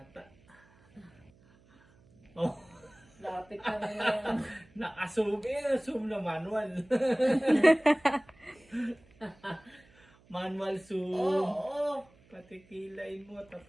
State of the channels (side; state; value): right; noise; hum, 29 dB below the sound